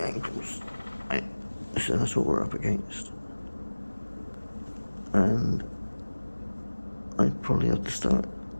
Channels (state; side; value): inverted; both; correlation -1.00